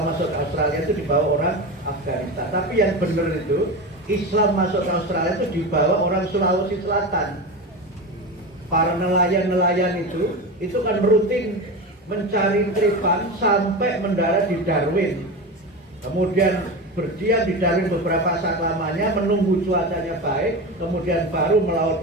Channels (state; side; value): normal; both; correlation 0.23